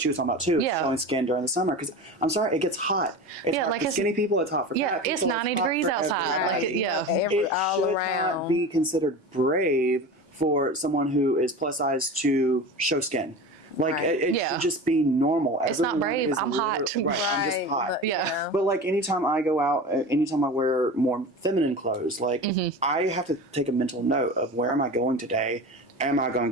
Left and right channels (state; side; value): normal; both; correlation 0.31